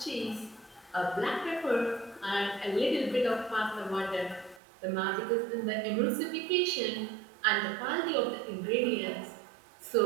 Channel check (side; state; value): left; drops out; at 4.6 s